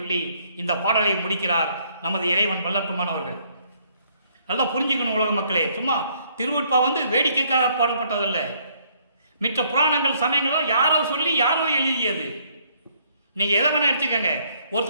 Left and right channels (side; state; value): both; inverted; correlation -0.66